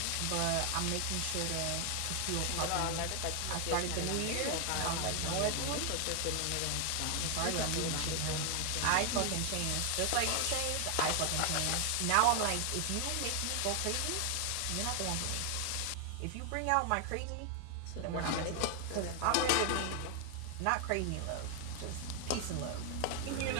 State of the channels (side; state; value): both; different; correlation 0.00